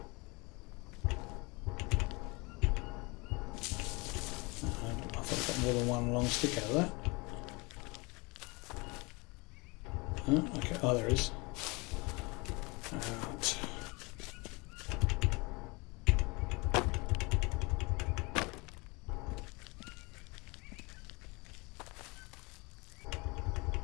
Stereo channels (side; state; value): right; quieter; 27.0 dB